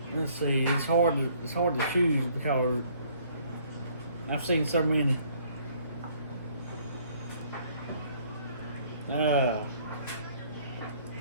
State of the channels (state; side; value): inverted; both; correlation -0.62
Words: Let's see. It's hard to choose because I've seen so many.